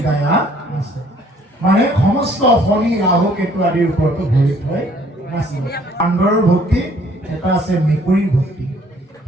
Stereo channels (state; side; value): normal; both; correlation 0.60